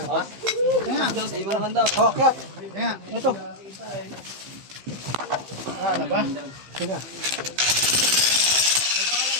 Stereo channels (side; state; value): left; late; 15 ms